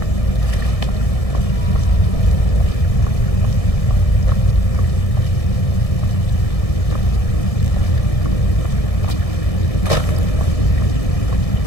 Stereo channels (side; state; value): right; late; 1.6 ms